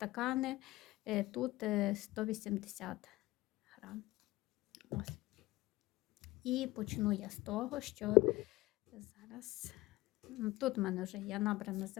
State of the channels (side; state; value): right; quieter; 19.2 dB